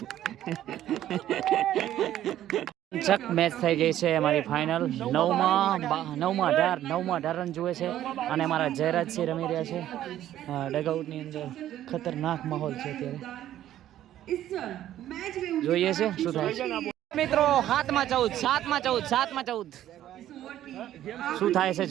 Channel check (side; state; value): left; quieter; 12.4 dB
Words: ચક મેચ થઈ ગઈ છે અમારી ફાઇનલ. 9માં 18 રન જુએ છે અને અમારા જયરાજસિંહ રમી રહ્યા છે ડગઆઉટની અંદર. ખતરનાક માહોલ છે અત્યારે. જોઈએ છે શું થાય છે. મિત્રો, 7માં 14 શું થાય છે